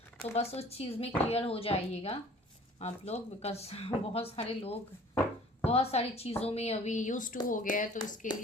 तो बस उस चीज़ में क्लियर हो जाइएगा आप लोग, बिकॉज बहुत सारे लोग बहुत सारी चीज़ों में अभी यूज टू हो गया है। तो इसके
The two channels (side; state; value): both; normal; correlation 0.50